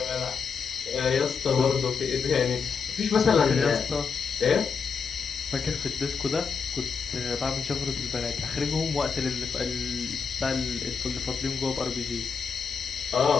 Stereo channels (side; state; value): right; quieter; 5.7 dB